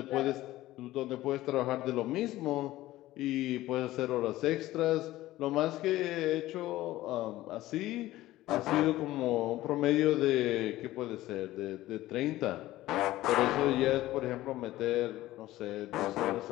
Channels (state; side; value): quieter; right; 16.1 dB